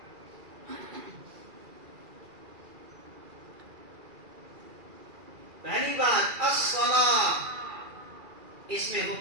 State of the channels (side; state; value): left; late; 2.4 ms